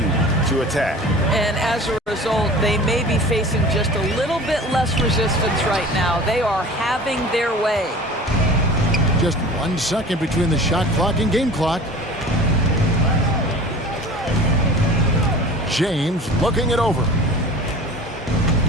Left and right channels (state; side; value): normal; both; correlation 0.41